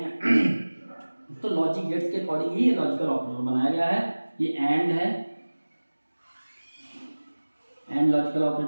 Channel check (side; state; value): both; inverted; correlation -1.00